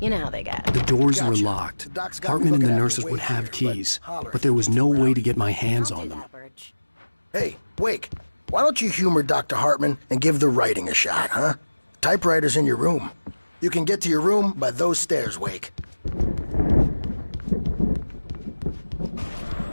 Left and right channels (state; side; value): inverted; both; correlation -1.00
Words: You know how they get. The doors were locked. Hartman and the nurses would have keys, but there was no way to get my hands on them. Hey, Wake, why don't you humor Dr. Hartman and give the writing a shot, huh? Typewriter's in your room. You can get to your room by those stairs, Wake.